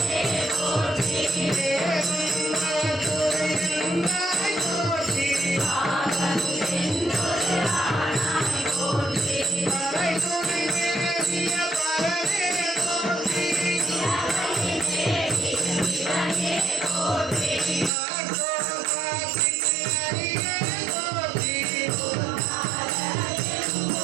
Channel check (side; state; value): left; drops out; at 17.9 s